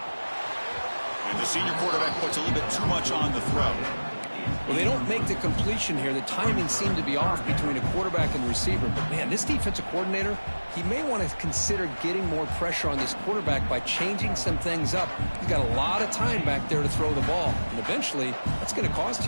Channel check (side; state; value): both; inverted; correlation -1.00